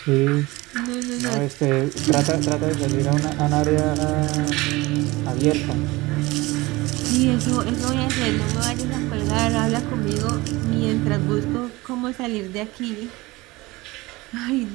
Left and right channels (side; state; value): left; quieter; 21.2 dB